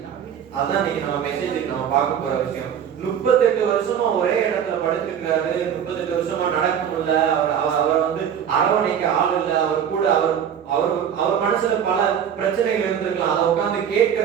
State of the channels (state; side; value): quieter; left; 8.6 dB